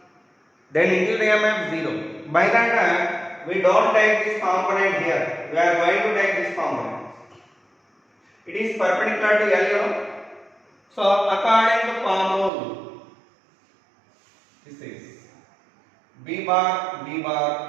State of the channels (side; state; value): left; drops out; at 12.5 s